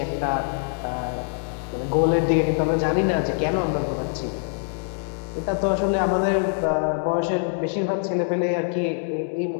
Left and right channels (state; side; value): silent; right; digital silence